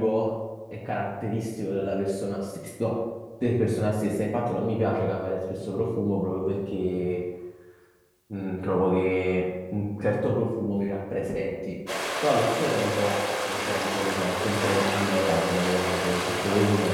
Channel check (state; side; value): identical; both; correlation 1.00